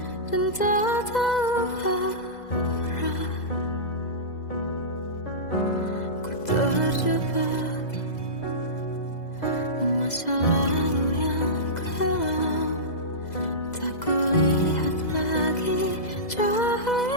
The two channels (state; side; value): late; right; 2.0 ms